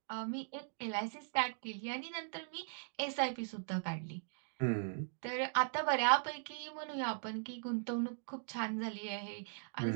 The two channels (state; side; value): silent; left; digital silence